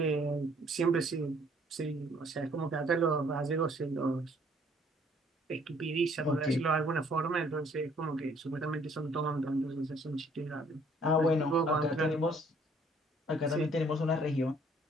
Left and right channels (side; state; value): both; normal; correlation 0.61